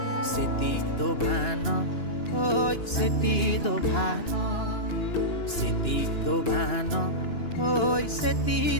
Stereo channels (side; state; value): right; late; 2.9 ms